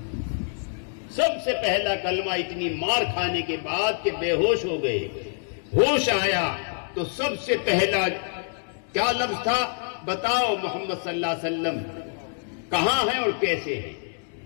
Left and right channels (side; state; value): right; silent; 57 dB below the other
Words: سب سے پہلا کلمہ اتنی مار کھانے کے بعد کہ بے ہوش ہو گئے. ہوش آیا تو سب سے پہلا کیا لفظ تھا؟ بتاؤ محمد صلی اللہ علیہ وسلم کہاں ہے اور کیسے ہے.